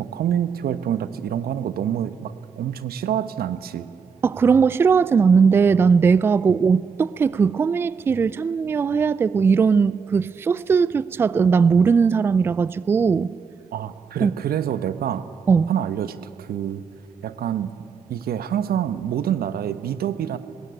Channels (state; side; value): quieter; left; 5.8 dB